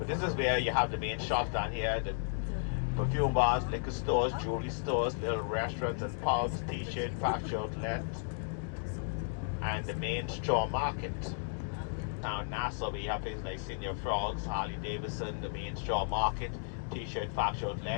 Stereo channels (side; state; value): right; silent; digital silence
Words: this is where you have the main shops down here, the perfume bars, liquor stores, jewelry stores, little restaurants and pubs, t-shirt, factory outlet, and the main straw market. Now in Nassau, we have places like Senior Frogs, Harley Davidson, the main straw market, t-shirt, factory